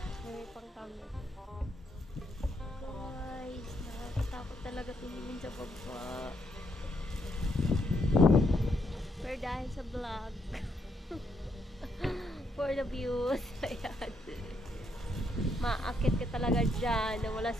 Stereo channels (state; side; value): normal; both; correlation 0.76